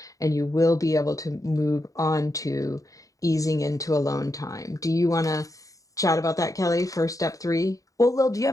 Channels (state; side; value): late; right; 0.16 ms